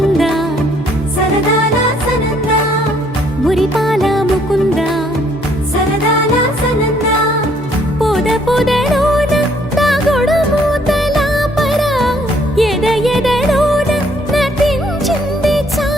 సరదాల సనందా మురిపాల ముకుందా సరదాల సనందా పొద పొదలోన తాగుడు మూతల పరా ఎద ఎదలోన నటించింది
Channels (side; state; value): both; normal; correlation 0.65